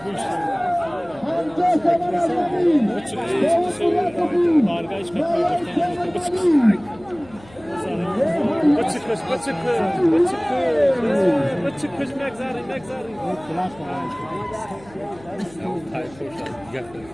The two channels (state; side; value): noise; left; hum, 23 dB below the sound